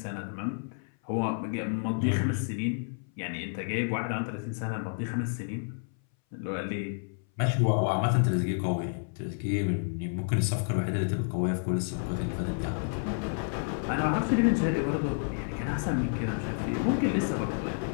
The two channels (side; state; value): right; silent; 58 dB below the other